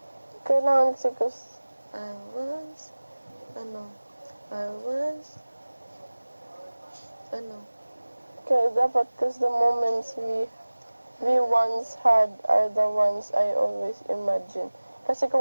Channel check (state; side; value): inverted; both; correlation -1.00